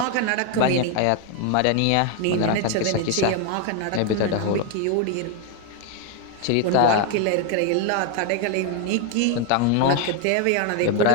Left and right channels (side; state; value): both; different; correlation 0.01